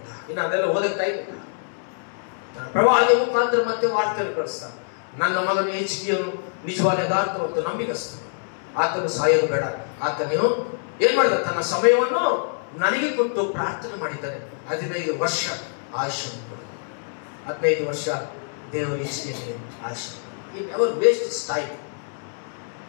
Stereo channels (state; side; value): silent; right; 62 dB below the other